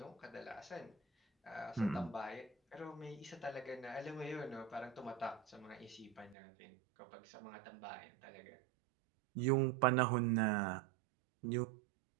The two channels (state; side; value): drops out; left; at 6.4 s